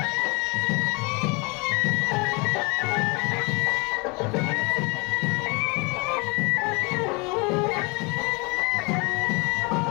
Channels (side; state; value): right; quieter; 29.5 dB